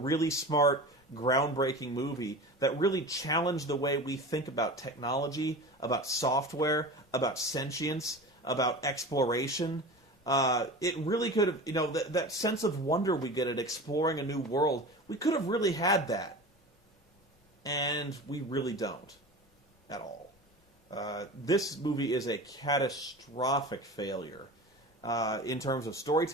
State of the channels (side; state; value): both; normal; correlation 0.32